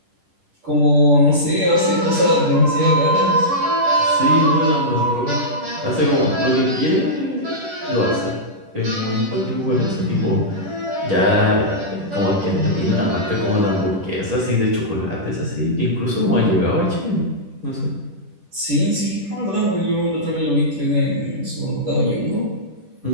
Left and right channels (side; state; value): left; late; 10 ms